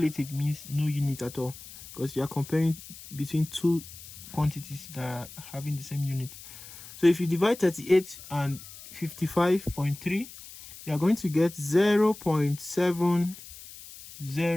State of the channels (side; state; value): left; noise; hiss, 16 dB below the sound